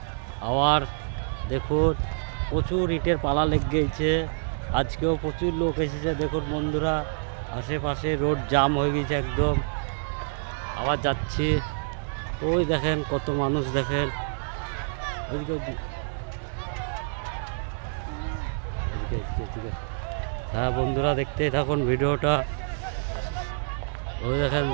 আবার দেখুন প্রচুর ইটের পালা লেগে গেছে। আজকেও প্রচুর লোক এসেছে। দেখুন বন্ধুরা, আশেপাশে রোড জাম হয়ে গেছে একদম। আবার যাচ্ছি, ওই দেখেন কত মানুষ, দেখেন হ্যাঁ বন্ধুরা, দেখতে থাকুন ভিডিওটা। ওই দেখেন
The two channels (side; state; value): left; silent; digital silence